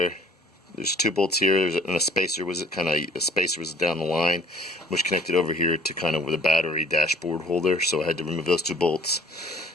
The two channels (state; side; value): normal; both; correlation 0.53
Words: there's two bolts here, and a spacer was down the line, which connected over here to kind of with a battery dashboard holder, so I had to remove those two bolts.